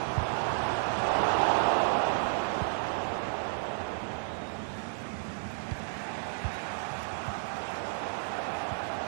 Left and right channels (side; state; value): left; silent; digital silence